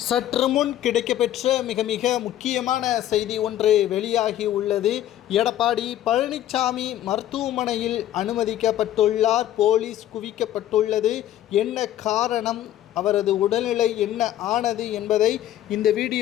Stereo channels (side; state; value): right; quieter; 12.5 dB